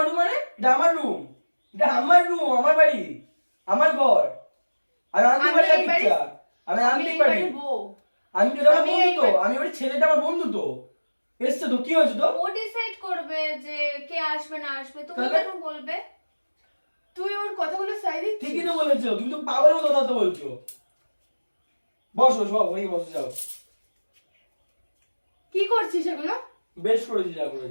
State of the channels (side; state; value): both; inverted; correlation -1.00